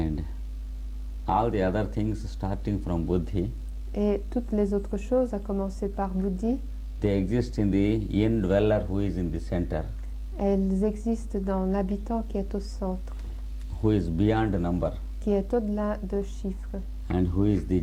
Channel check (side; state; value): both; identical; correlation 1.00